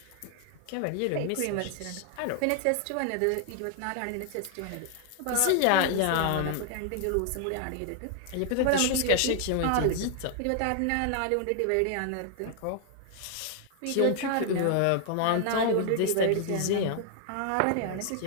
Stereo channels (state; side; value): different; both; correlation 0.00